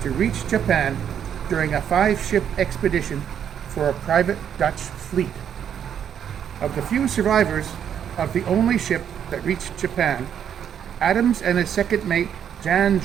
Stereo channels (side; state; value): left; quieter; 8.8 dB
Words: to reach Japan during a 5-ship expedition for a private Dutch fleet. Of the few survivors of the only ship that reached Japan, Adams and his second mate, Jan